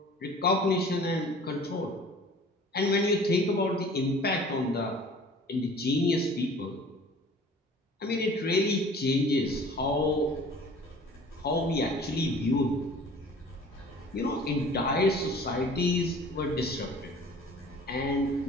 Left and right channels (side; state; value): both; normal; correlation 0.47